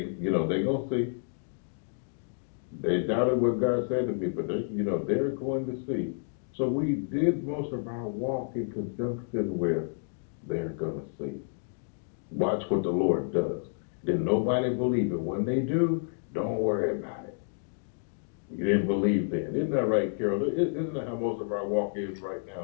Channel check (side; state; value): right; silent; digital silence